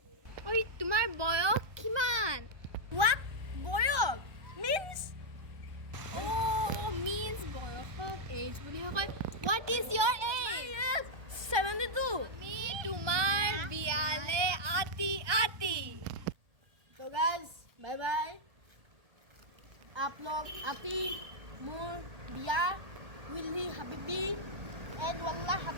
ঐ তোমাৰ বয়স কিমান What? বয়স means means বয়সক age বুলি কয় what is your age 72. আমি তোমাৰ বিয়ালে আতি So guys, bye bye. आप लोग आती मोर बिया Willey Habibi and Wallah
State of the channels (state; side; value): late; left; 1.2 ms